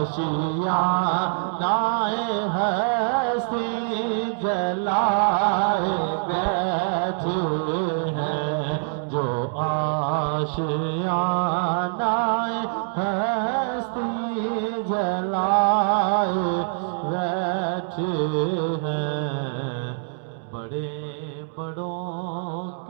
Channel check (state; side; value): silent; left; digital silence